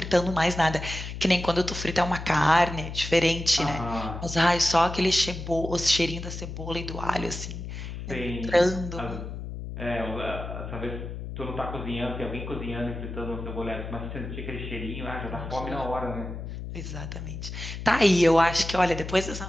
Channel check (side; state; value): left; noise; hum, 8 dB below the sound